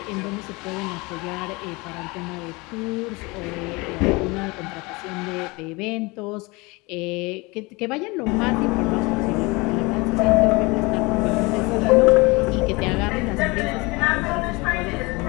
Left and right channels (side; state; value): right; quieter; 25.1 dB